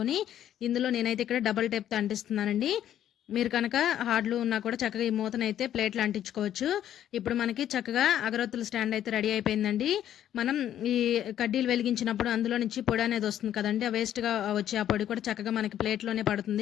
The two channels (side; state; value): right; quieter; 11.0 dB